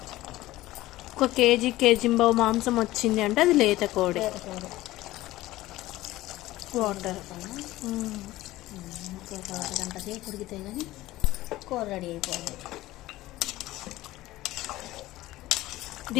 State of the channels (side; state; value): right; quieter; 16.9 dB